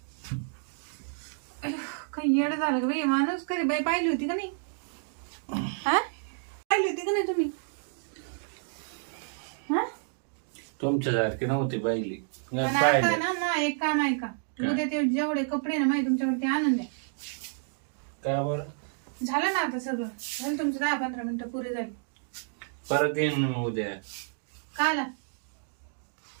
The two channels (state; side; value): silent; left; digital silence